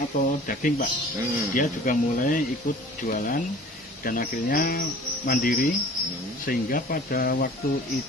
daging Pak. Dia juga mulai ikut jualan dan akhirnya mandiri sehingga pada waktu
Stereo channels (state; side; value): normal; both; correlation 0.46